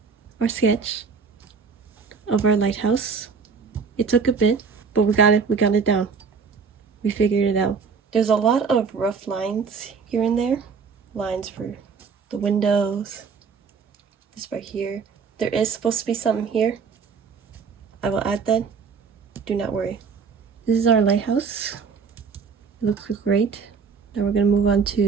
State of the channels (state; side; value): quieter; left; 5.5 dB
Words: our sketch of our lighthouse. It took a bit, but we got it down. We figured it out. There's a lot of rough lines here and there. Lines for the windows. This right here. There is supposed to be something here. I will add that. Do not worry. This is our lighthouse. It looks great. Now we're going to move on